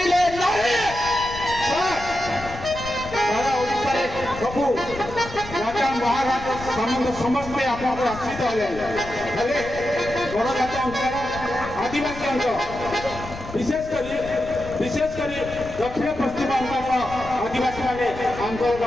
নাই। সারা ওড়িশারে সবু রাজা মহারাজা সম্বন্ধ সমস্তে আপনার আশ্রিত হলে ହେଲେ ବଡ଼ ଜାତି ଅଞ୍ଚଳ ଆଦିବାସୀ ଅଞ୍ଚଳ ବିଶେଷ କରି ଦକ୍ଷିଣ ପଶ୍ଚିମ ଅଞ୍ଚଳର ଆଦିବାସୀମାନେ ଆନ୍ଦୋଳନ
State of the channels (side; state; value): left; noise; rumble, 13 dB below the sound